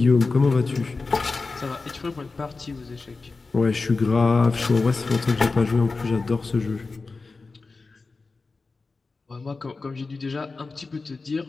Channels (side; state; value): right; quieter; 4.0 dB